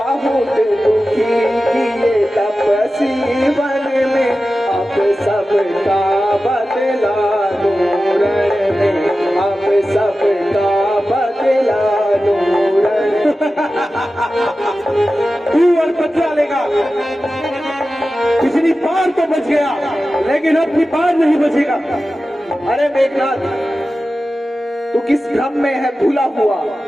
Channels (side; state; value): both; normal; correlation 0.94